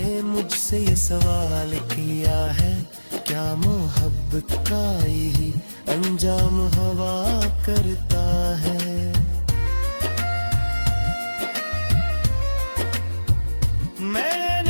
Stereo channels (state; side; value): inverted; both; correlation -1.00